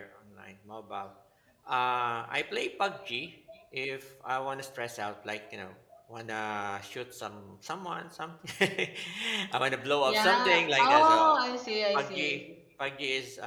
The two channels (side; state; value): both; identical; correlation 1.00